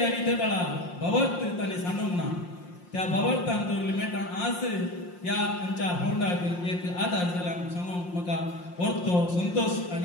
आनी ते काळा भवार्थ ताणें सांडूंक ना. त्या भवार्थान दवरले मेटां आज ह्या आमच्या फोंडाक एक आदार जाला सांगूंक म्हाका व्हरतो संतोष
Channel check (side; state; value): right; late; 5.7 ms